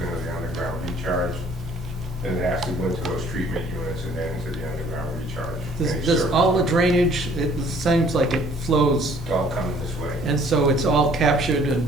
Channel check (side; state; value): both; normal; correlation 0.58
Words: into the underground recharge. And it has to go into those treatment units and then into the underground recharge. Any does service. all the drainage, it seems like it flows, It's all coming this way. and so it's all captured